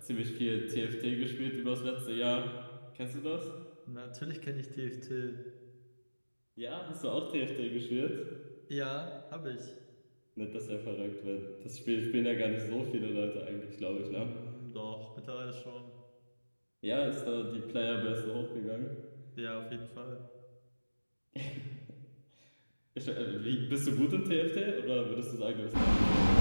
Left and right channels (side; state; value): both; inverted; correlation -1.00